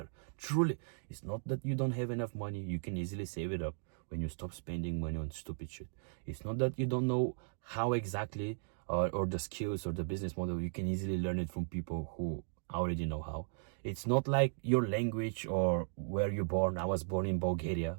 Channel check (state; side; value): silent; left; digital silence